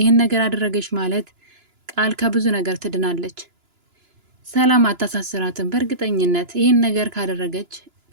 ነገር አደረገች ማለት ቃል ከብዙ ነገር ትድናለች። ሰላም አታሳስራትም። በእርግጠኝነት ይህን ነገር ካደረገች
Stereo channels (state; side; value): late; left; 2.9 ms